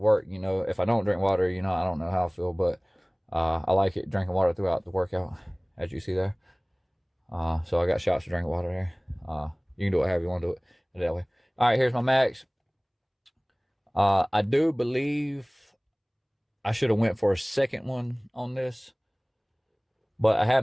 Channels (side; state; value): both; identical; correlation 1.00